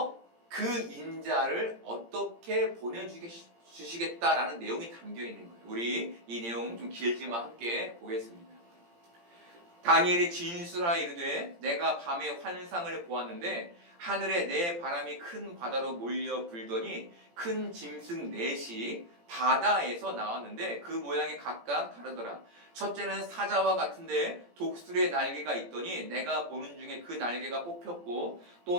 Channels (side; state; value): left; late; 17 ms